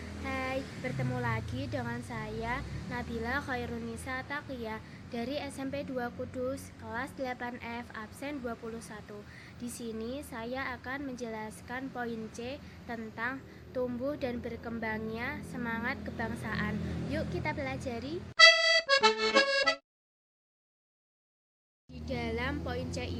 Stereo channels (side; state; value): both; identical; correlation 1.00